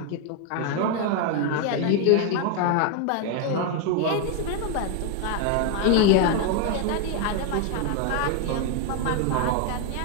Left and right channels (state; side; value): different; both; correlation 0.01